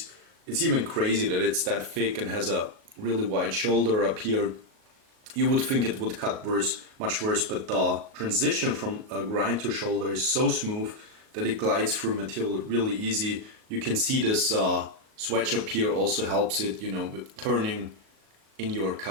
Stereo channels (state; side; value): late; left; 38 ms